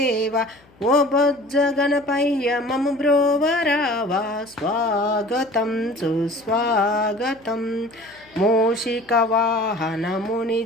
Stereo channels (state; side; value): noise; left; hum, 29 dB below the sound